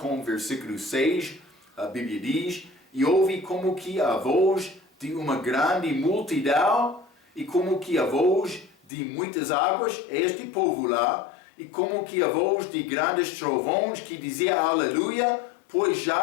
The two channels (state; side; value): drops out; right; at 8.9 s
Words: o versículo 6. A Bíblia diz: E ouvi como que a voz de uma grande multidão, e como que a voz de muitas águas, este povo lá, e como que a voz de grandes trovões, que dizia aleluia, pois